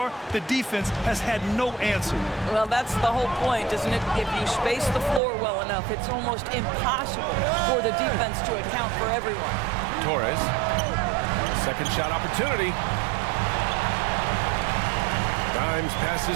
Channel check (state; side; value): drops out; left; at 5.2 s